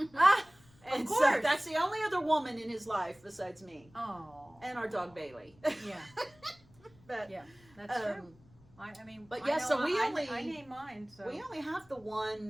Ah, And of so course. that's the only other woman in his life besides me Oh. and our dog Bailey. Yeah. But Yeah, that's true. um, I mean, but I yeah, know so we I only- name mine. So we only have the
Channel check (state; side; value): noise; left; rumble, 27 dB below the sound